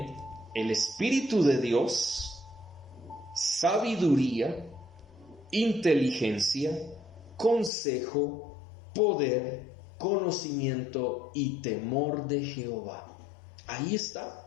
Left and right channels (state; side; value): drops out; right; at 7.7 s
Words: el Espíritu de Dios, sabiduría, inteligencia, consejo, poder, conocimiento y temor de Jehová. Ahí